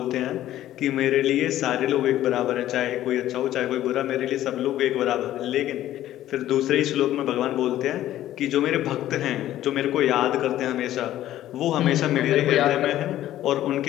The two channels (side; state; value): right; quieter; 13.3 dB